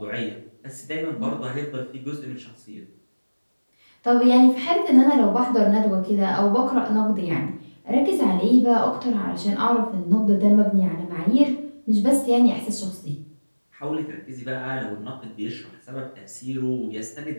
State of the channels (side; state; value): both; inverted; correlation -1.00